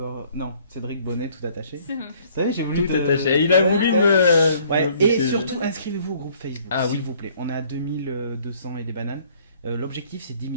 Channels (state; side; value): inverted; both; correlation -0.59